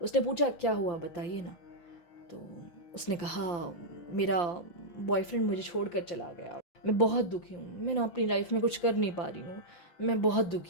उसने पूछा, क्या हुआ बताइए ना। तो उसने कहा, मेरा बॉयफ्रेंड मुझे छोड़कर चला गया, मैं बहुत दुखी हूँ, मैं ना अपनी लाइफ में कुछ कर नहीं पा रही हूँ, मैं बहुत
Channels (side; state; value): right; late; 5.8 ms